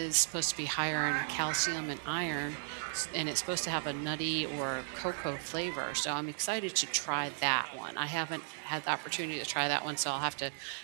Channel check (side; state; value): left; silent; digital silence